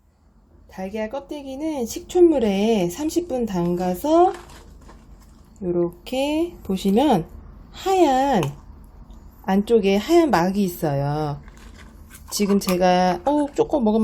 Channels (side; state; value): both; identical; correlation 1.00